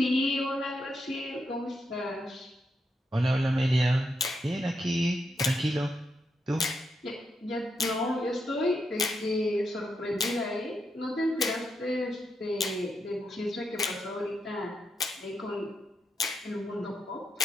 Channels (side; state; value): both; normal; correlation 0.82